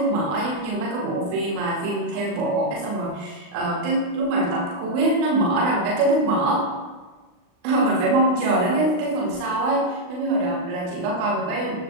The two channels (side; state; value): left; late; 39 ms